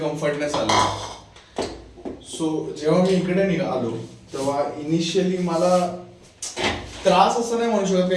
आला. सो जेव्हा मी इकडे आलो तेव्हा इनिशियली मला त्रास असं नाही म्हणू शकत,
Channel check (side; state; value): both; identical; correlation 1.00